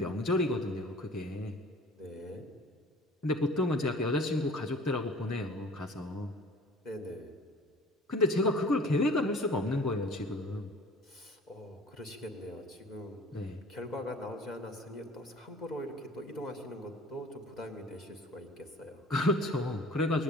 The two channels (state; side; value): normal; both; correlation 0.46